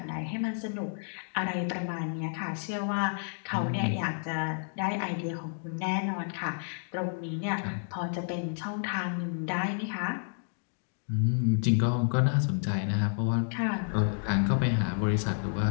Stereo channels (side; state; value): right; silent; digital silence